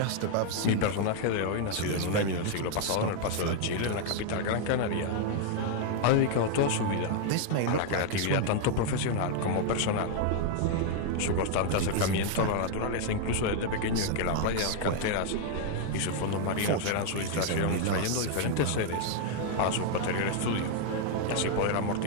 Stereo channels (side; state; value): both; different; correlation 0.00